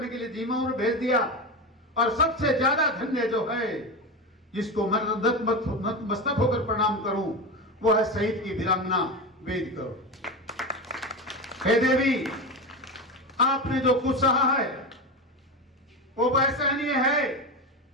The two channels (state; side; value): normal; both; correlation 0.20